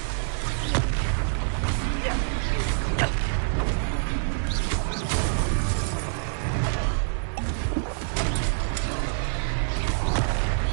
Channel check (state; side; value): silent; left; 61 dB below the other